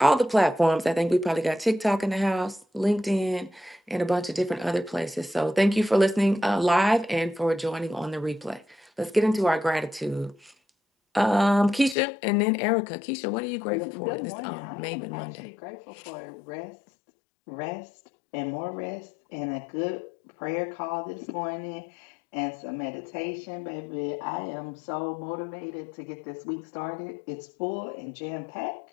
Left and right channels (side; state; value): right; drops out; at 12.0 s